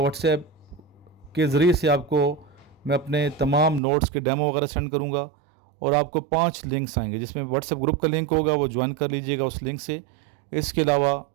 واٹس ایپ کے ذریعے سے آپ کو میں اپنے تمام نوٹس کے ڈیمو وغیرہ سینڈ کروں گا، اور آپ کو 5 لنکس آئیں گے جس میں واٹس ایپ گروپ کا لنک ہوگا، وہ جوائن کر لیجئے گا اس لنک سے۔ اس کے علاوہ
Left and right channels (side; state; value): left; drops out; at 3.8 s